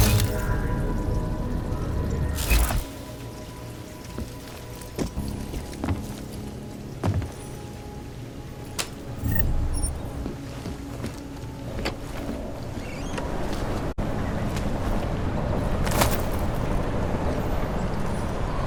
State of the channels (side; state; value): both; identical; correlation 1.00